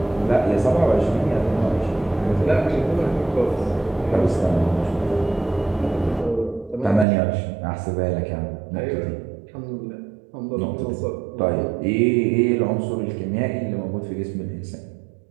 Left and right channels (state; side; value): drops out; left; at 7.1 s